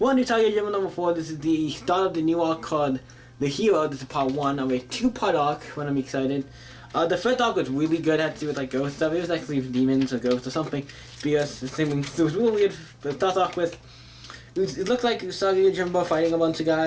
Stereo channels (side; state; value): both; identical; correlation 1.00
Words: on Usagi Yojimbo number 4. This is the start of the new arc called The Hero. This is part 1 of a 2-part arc. When I'm excited. The first arc was really good. It had to do with like ghost stuff. It was actually demons or ghosts or something. Because it was really weird. But start off with it looked like Usagi Yojimbo fighting a bunch of